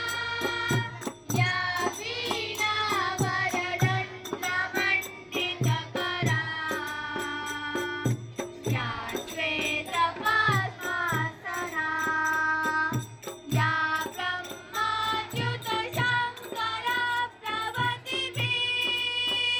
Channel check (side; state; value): both; identical; correlation 1.00